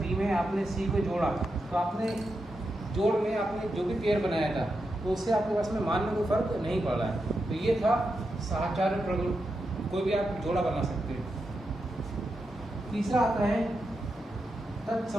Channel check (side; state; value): both; normal; correlation 0.87